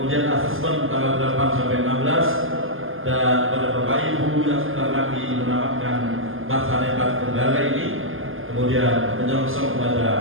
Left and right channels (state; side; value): late; left; 0.59 ms